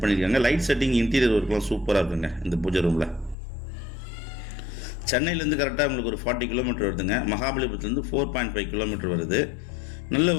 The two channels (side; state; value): right; drops out; at 3.4 s